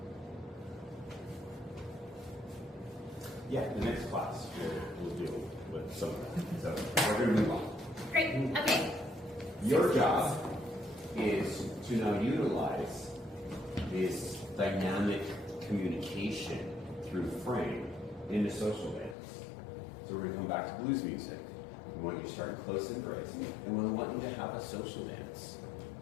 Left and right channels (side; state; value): right; drops out; at 19.2 s